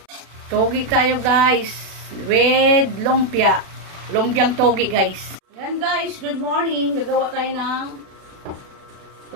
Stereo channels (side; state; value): left; late; 36 ms